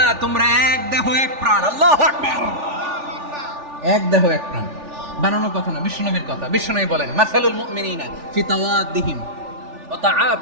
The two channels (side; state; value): left; late; 3.4 ms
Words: তোমরা এক দেহ এক প্রাণ। আল্লাহু আকবার। এক দেহ এক প্রাণ বানানো কথা না, বিশ্বনবীর কথা। বিশ্বনবী বলেন মাসালুল মুমিনিনা ফি তাওয়াদ্দিহিম ওয়া